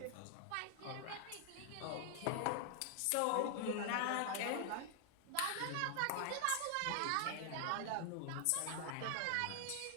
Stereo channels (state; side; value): different; both; correlation 0.00